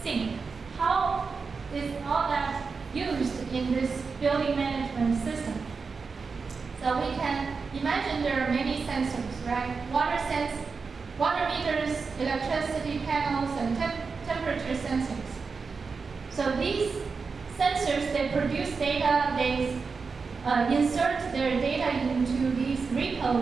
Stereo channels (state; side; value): quieter; left; 4.9 dB